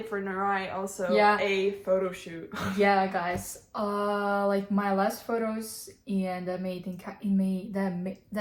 for Nurai also a photo shoot. Yeah, guys. Like my last photos and I made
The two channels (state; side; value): identical; both; correlation 1.00